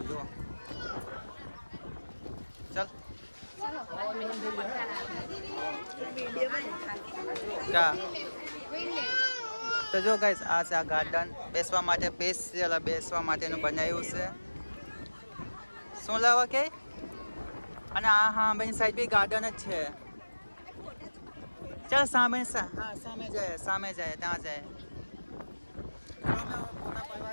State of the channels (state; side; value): inverted; both; correlation -1.00